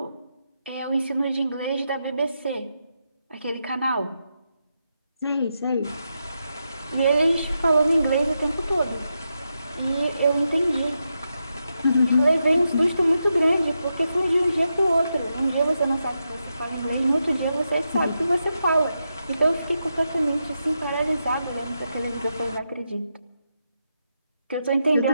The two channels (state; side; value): inverted; both; correlation -0.86